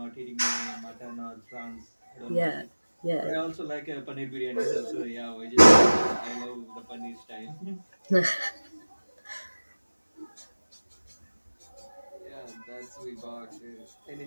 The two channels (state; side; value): inverted; both; correlation -1.00